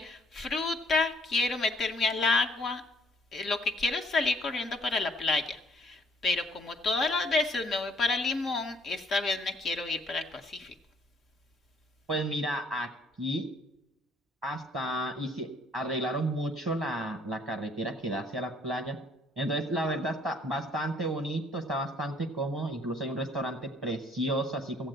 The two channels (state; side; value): normal; both; correlation 0.62